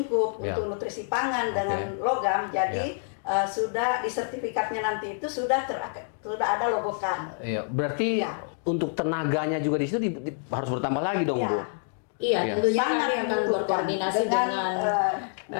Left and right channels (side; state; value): right; silent; digital silence